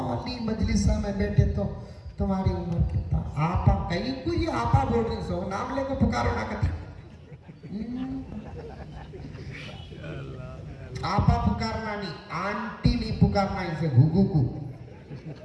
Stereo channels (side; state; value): both; identical; correlation 1.00